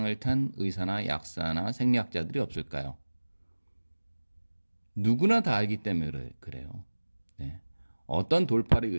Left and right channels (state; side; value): inverted; both; correlation -1.00